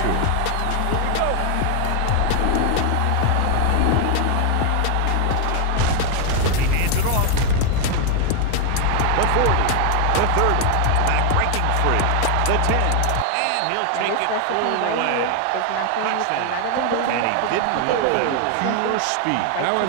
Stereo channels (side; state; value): both; different; correlation 0.00